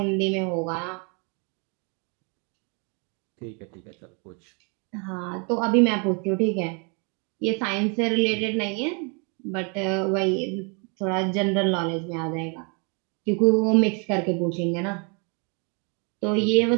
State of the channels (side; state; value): left; quieter; 35.1 dB